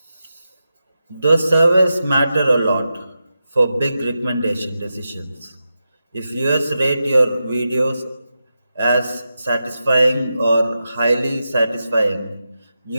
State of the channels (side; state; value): both; inverted; correlation -0.90